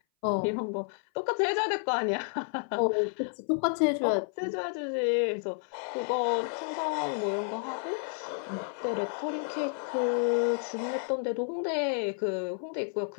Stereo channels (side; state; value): right; silent; 57 dB below the other